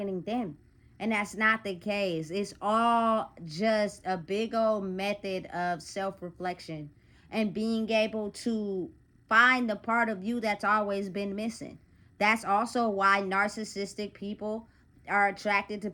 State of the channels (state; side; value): identical; both; correlation 1.00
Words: them. And that's not the case. It's all just a big old method of self-reflection and being able to find the part of you that's always been missing. That's also why narcissistic people are attracted to